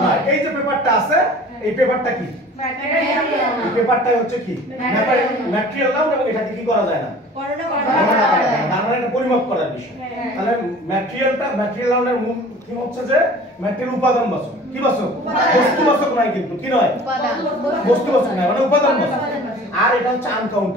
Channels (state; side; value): normal; both; correlation 0.45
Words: নয়। এই যে পেপারটা আছে, এই পেপারটা কি? এই পেপারটাই হচ্ছে কি ম্যাটেরিয়াল নাউন, এবং এটাকে কি করা যায় না, তার মানে এটা পরিমাপ করার বিষয়। তাহলে ম্যাটেরিয়াল নাউনের মূল কি হচ্ছে যে ম্যাটেরিয়াল উপাদানবাচক। কি বাচক? বস্তুবাচক নয়, কিন্তু কি নয়? বস্তুবাচক নয়, মানে উপাদানবাচক। আর এটা হচ্ছে